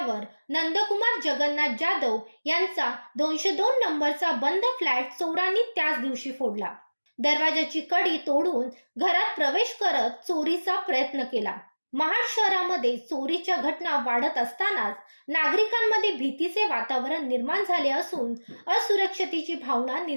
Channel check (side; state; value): both; inverted; correlation -1.00